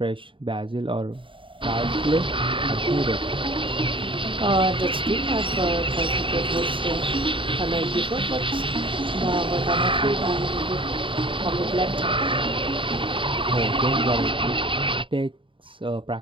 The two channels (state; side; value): late; left; 0.25 ms